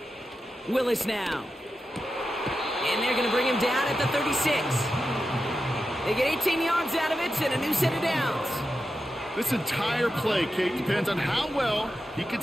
Willis now. And they're going to bring him down at the 36. They get 18 yards out of it and a new set of downs. This entire play, Kate, depends on how well he can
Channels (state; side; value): normal; both; correlation 0.90